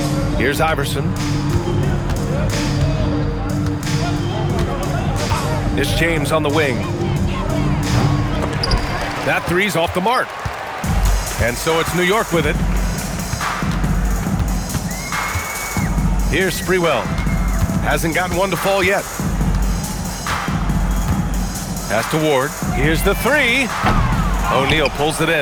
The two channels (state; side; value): identical; both; correlation 1.00